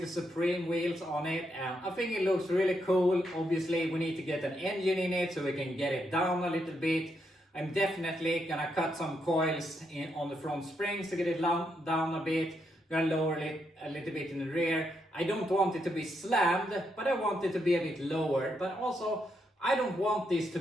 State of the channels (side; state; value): both; normal; correlation 0.80